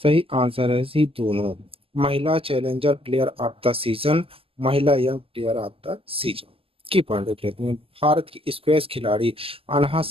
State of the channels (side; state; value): left; late; 0.27 ms